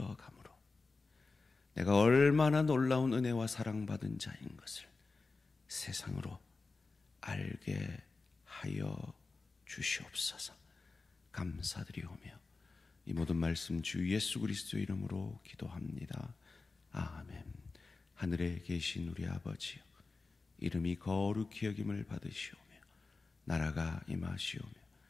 내가 얼마나 놀라운 은혜와 사랑받은 자인 것을 세상으로 알게 하여 주시옵소서. 감사드리오며 이 모든 말씀 주 예수 그리스도 이름으로 기도합니다. 아멘. 하늘에 계신 우리 아버지여, 이름이 거룩히 여김을 받으시오며 나라가 임하시오며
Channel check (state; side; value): quieter; right; 4.0 dB